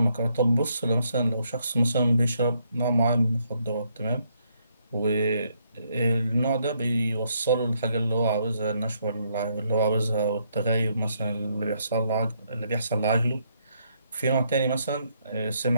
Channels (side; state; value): both; inverted; correlation -0.74